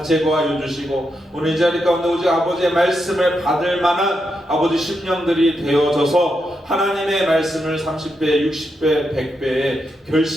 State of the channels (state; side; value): normal; both; correlation 0.84